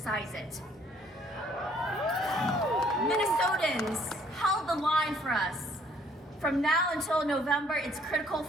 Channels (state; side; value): normal; both; correlation 0.62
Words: it. Minnesotans held the line for us. From now until November, it's critical